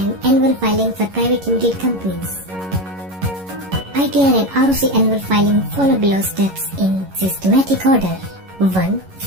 annual filing for private limited companies. ITR and ROC annual filing follow below steps in systematic order. 1.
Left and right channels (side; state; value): left; late; 11 ms